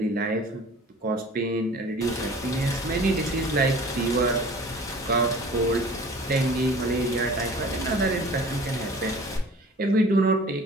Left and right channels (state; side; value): normal; both; correlation 0.45